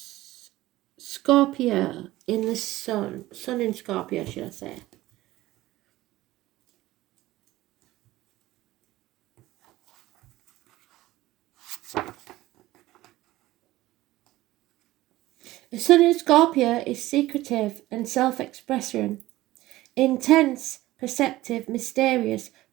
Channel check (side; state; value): left; quieter; 16.9 dB